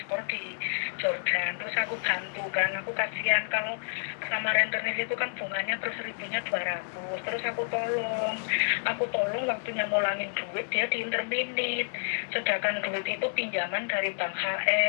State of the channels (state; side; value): silent; right; digital silence